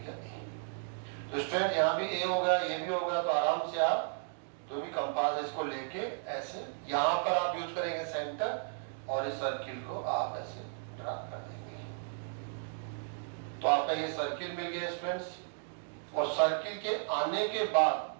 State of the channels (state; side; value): silent; left; digital silence